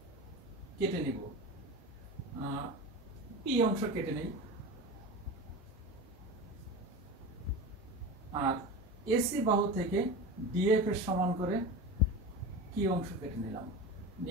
কেটে নিব, পি অংশ কেটে নেই, আর এসি বাহু থেকে ডিএফ এর সমান করে কি অংশ কেটে নিলাম,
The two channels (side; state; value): both; normal; correlation 0.27